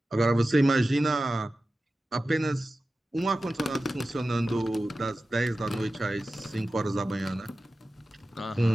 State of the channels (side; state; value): both; normal; correlation 0.94